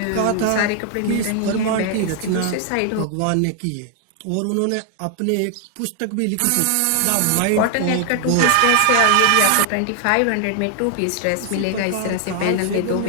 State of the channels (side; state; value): both; different; correlation 0.00